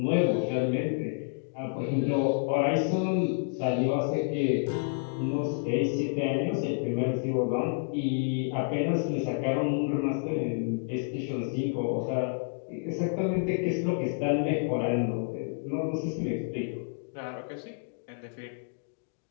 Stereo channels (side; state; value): right; silent; digital silence